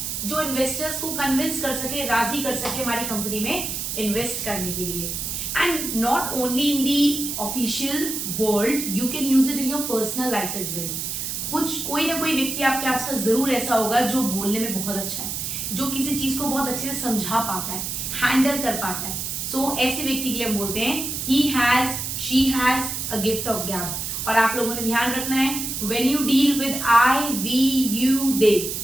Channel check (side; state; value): right; noise; hiss, 4 dB below the sound